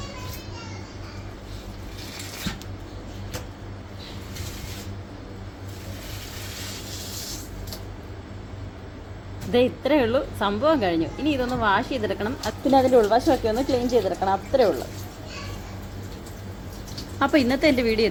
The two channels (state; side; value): identical; both; correlation 1.00